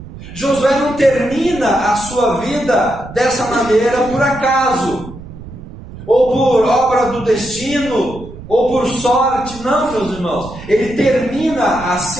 Josué não termina a sua vida dessa maneira por acaso, ou por obra do destino, ou por sorte. Não, meus irmãos, ele termina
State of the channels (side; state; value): right; noise; rumble, 15 dB below the sound